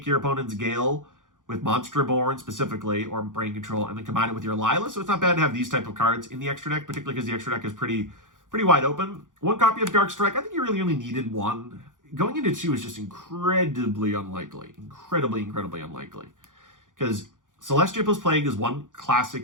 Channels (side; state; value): left; late; 0.88 ms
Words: your opponent's Gale with Monster Reborn specifically, or Brain Control, and then combine it with your Lila. So it's not bad to have these type of cards in the extra deck, particularly because the extra deck is pretty wide open. 1 copy of Dark Strike. I think you really only needed 1. Going into 2 is just incredibly unlikely. Incredibly unlikely. Because Celestia plus Plague is one